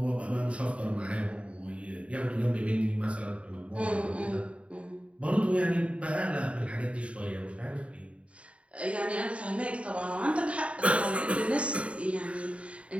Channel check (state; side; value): late; left; 0.063 ms